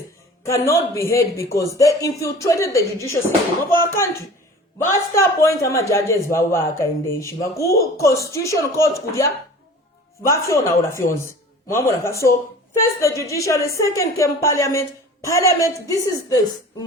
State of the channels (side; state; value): both; normal; correlation 0.42